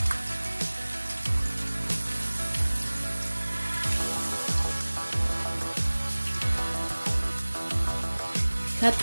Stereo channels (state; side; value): inverted; both; correlation -1.00